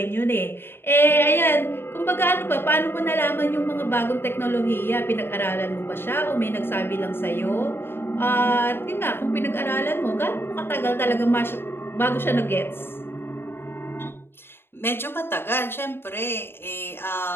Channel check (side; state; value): right; late; 0.11 ms